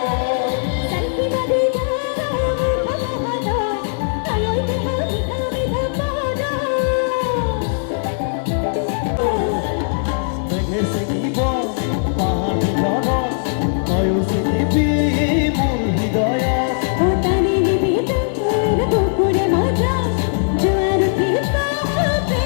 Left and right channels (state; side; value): silent; right; digital silence